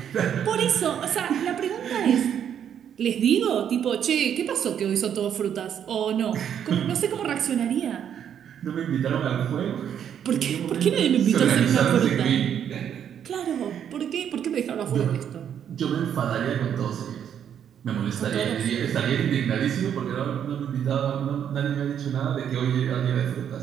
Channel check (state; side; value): quieter; left; 9.0 dB